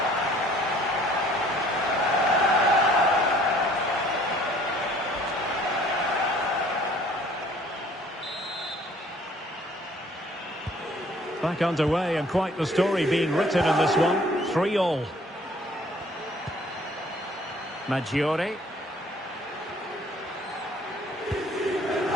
Back underway, and quite the story being written in this one. 3-3. Maggiore.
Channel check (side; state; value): both; normal; correlation 0.56